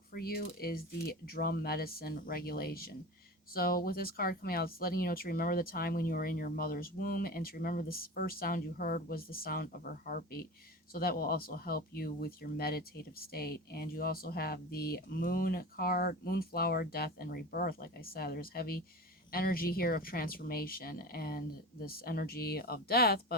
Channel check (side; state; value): both; normal; correlation 0.30